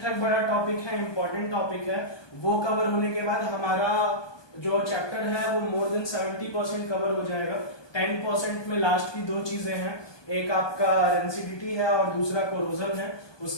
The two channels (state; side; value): late; right; 1.2 ms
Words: ठाक बड़ा टॉपिक है, इंपॉर्टेंट टॉपिक है। वो कवर होने के बाद हमारा जो चैप्टर है वो मोर देन 70% कवर हो जाएगा। 10% में लास्ट की 2 चीजें हैं, एक आपका रेंसिडिटी है और दूसरा कोरोजन है।